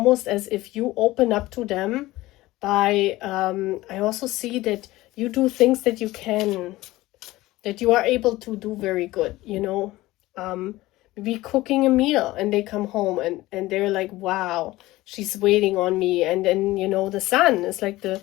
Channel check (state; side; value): quieter; right; 18.1 dB